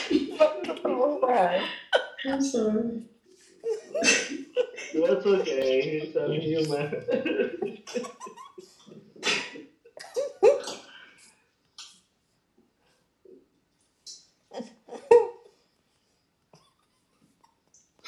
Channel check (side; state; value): both; identical; correlation 1.00